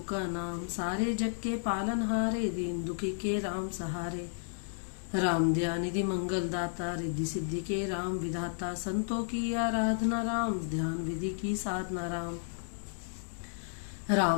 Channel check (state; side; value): silent; right; 56 dB below the other